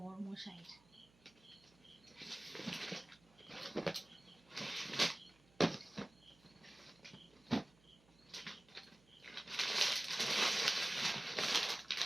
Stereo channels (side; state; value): right; noise; hum, 29 dB below the sound